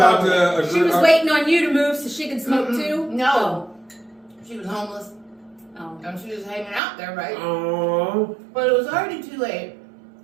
to agree. She was waiting on you to move so she could smoke too? No. She was homeless. Oh. And she was hanging out there, right? Oh. But it was already too late.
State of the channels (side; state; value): left; drops out; at 6.8 s